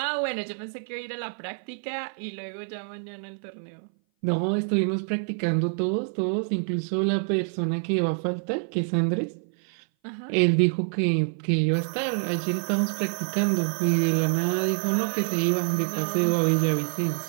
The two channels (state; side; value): silent; left; 58 dB below the other